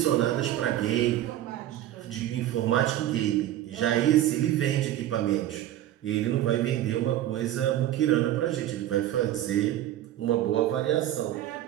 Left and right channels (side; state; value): left; quieter; 13.0 dB